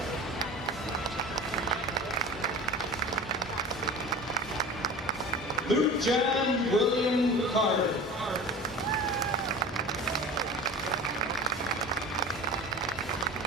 Luke John William Carter.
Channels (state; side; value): normal; both; correlation 0.36